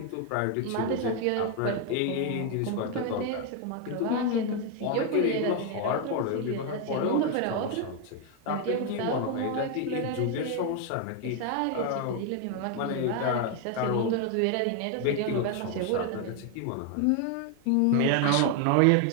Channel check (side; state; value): both; different; correlation 0.01